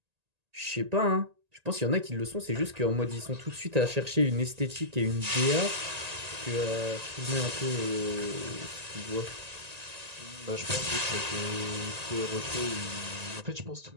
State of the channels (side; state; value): left; late; 1.9 ms